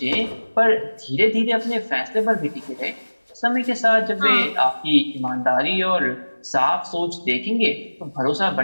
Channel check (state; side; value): inverted; both; correlation -1.00